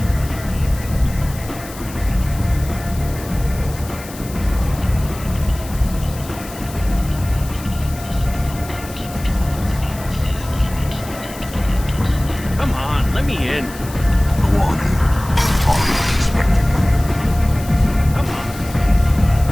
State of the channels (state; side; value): noise; left; hiss, 16 dB below the sound